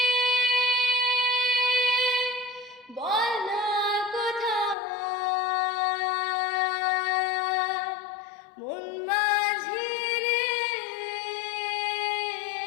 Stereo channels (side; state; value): right; drops out; at 4.8 s